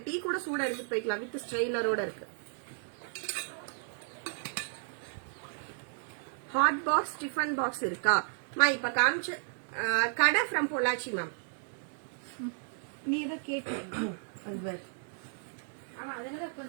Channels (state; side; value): silent; left; digital silence